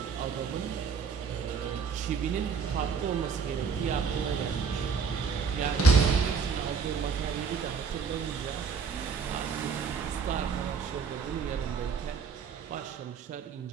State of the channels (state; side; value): quieter; left; 5.8 dB